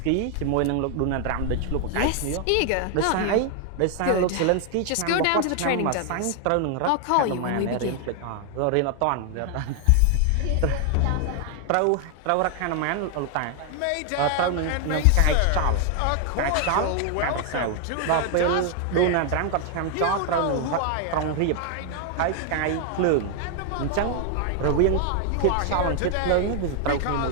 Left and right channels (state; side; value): different; both; correlation 0.00